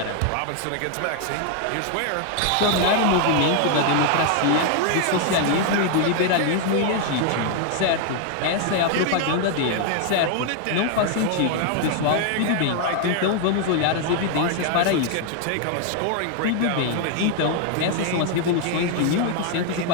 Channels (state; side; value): different; both; correlation 0.00